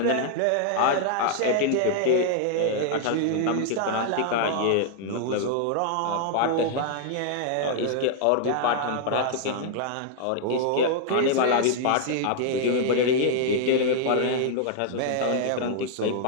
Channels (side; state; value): both; different; correlation -0.01